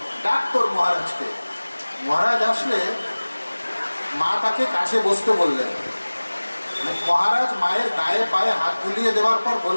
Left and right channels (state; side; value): inverted; both; correlation -1.00